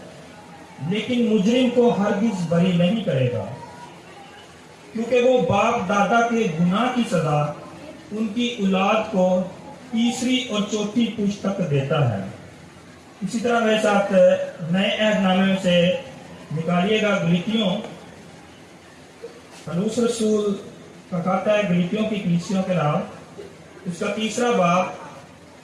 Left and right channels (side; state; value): both; identical; correlation 1.00